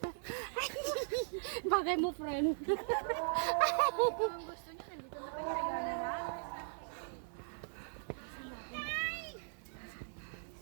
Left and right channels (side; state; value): left; silent; 52 dB below the other